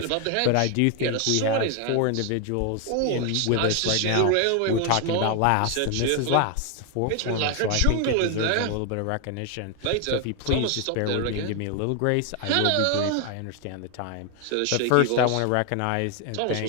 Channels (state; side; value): different; both; correlation 0.01